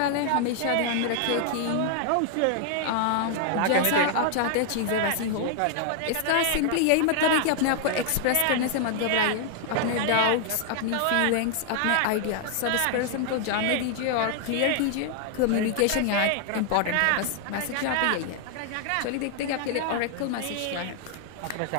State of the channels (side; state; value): both; different; correlation 0.00